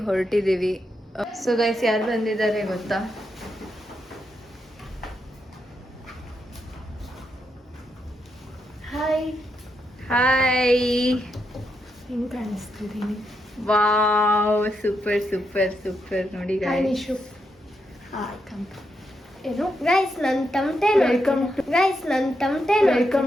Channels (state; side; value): normal; both; correlation 0.82